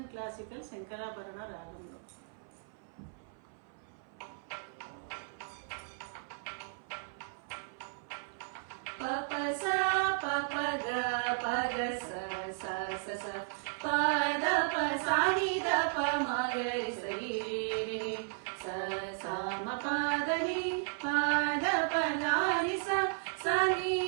ಕ್ಲಾಸಿಕಲ್ ಶಂಕರಾಭರಣ ರಾಗಂలో ಪಪ ಸ ಪಪ ಗ ಪಗ ಸ ಸ ಸ ಸ ಪದ ಪ ಸಾ ನಿ ದ ಪ ಮ ಗ ರಿ ಸ ರಿ ರಿ ಸ ಸ ಮ ಪದ ನಿ ಪದ ಪ ನ ರಿ ಸ ಸ ನಿ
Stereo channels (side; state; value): left; silent; 55 dB below the other